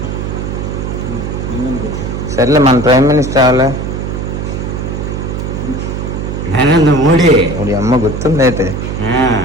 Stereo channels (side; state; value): right; noise; hum, 4 dB below the sound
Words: సర్లే మన ప్రైమ్ మినిస్టర్ అవ్వాలి. నరేంద్ర మోడీ. ఇప్పుడు అమ్మ గుర్తుంది అయితే.